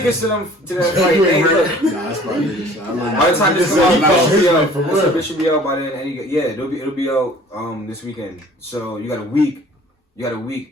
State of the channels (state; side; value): normal; both; correlation 0.50